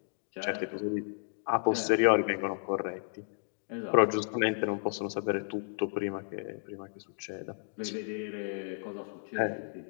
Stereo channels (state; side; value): silent; right; digital silence